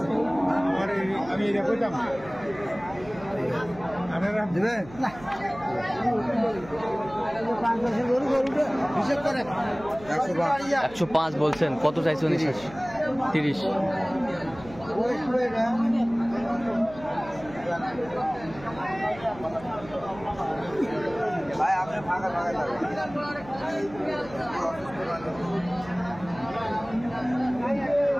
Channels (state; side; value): noise; right; hum, 18 dB below the sound